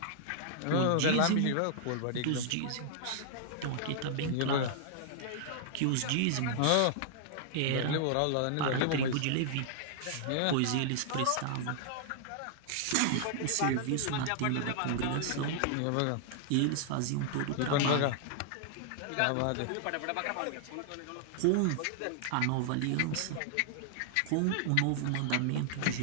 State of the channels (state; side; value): different; both; correlation -0.01